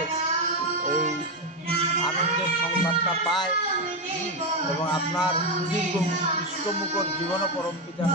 এই আনন্দের সংবাদটা পায় এবং আপনার সুদীর্ঘ ইষ্টমুখর জীবনও পরম পিতা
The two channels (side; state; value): both; normal; correlation 0.08